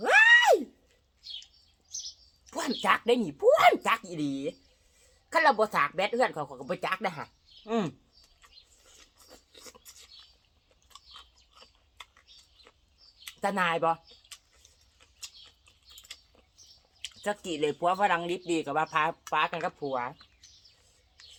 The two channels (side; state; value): both; identical; correlation 1.00